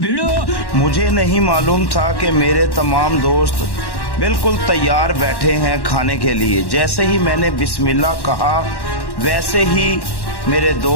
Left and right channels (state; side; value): late; right; 1.1 ms